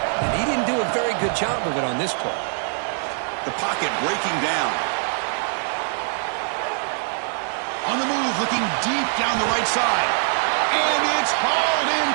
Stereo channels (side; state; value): left; silent; 63 dB below the other